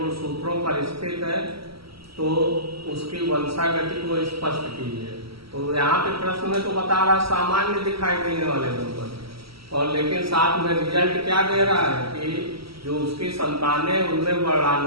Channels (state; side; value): late; left; 0.75 ms